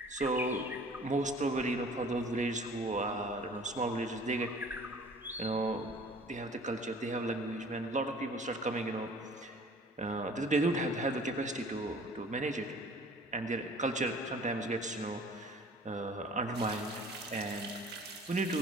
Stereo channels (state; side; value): normal; both; correlation 0.49